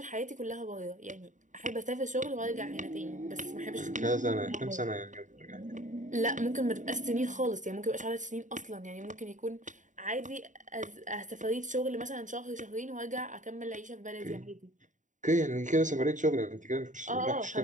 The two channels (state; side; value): late; left; 0.36 ms